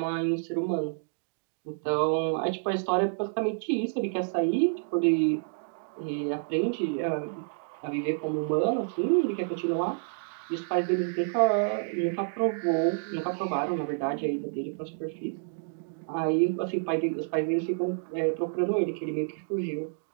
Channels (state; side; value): silent; left; digital silence